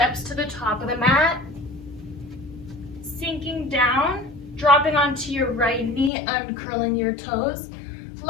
to the top of the mat. Sinking down, dropping onto your right knee, uncurling your toes.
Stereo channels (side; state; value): right; drops out; at 6.1 s